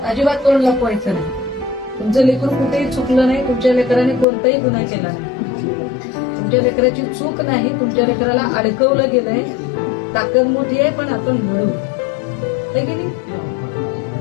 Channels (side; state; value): right; drops out; at 4.2 s